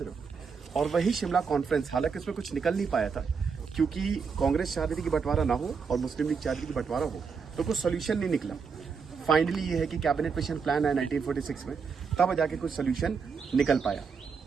रहे हो। और वही शिमला कॉन्फ्रेंस, हालांकि उसमें कुछ निकल नहीं पाया था क्योंकि कांग्रेस चाह रही थी कि बंटवारा ना हो और मुस्लिम लीग चाह रही थी कि बंटवारा हो, तो कुछ सोल्यूशन नहीं निकला। फाइनली ये है कि कैबिनेट मिशन प्लान है 1946 में, तब जाके कुछ सोल्यूशन निकल पाया।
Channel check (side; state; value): left; quieter; 5.7 dB